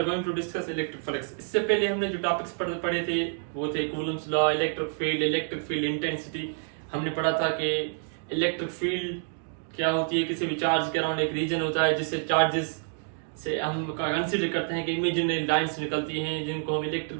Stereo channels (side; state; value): left; silent; digital silence